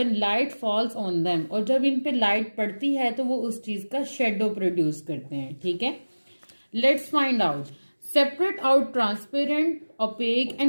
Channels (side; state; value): both; inverted; correlation -1.00